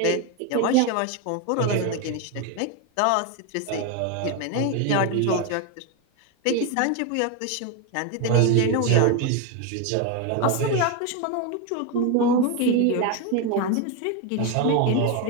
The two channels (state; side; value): different; both; correlation 0.02